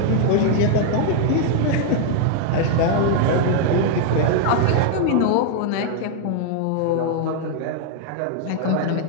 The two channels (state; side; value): different; both; correlation 0.00